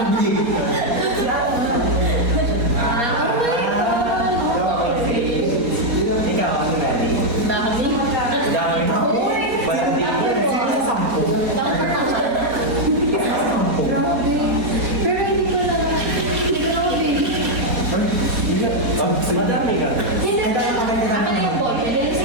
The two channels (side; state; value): left; late; 4.2 ms